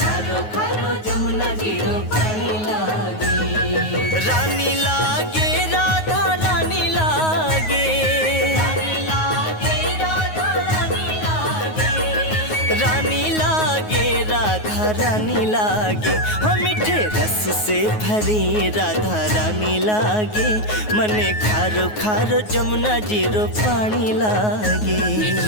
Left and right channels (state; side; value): late; right; 9.4 ms